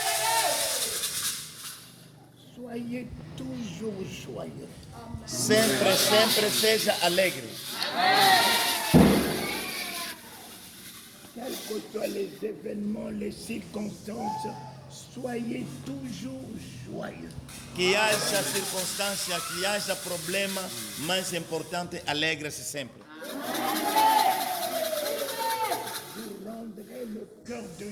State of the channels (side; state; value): both; identical; correlation 1.00